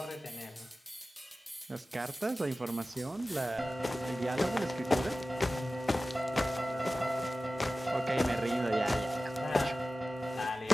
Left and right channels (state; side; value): normal; both; correlation 0.95